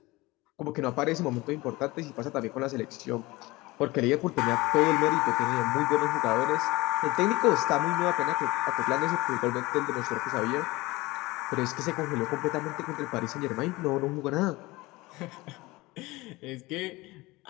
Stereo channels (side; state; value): right; quieter; 21.3 dB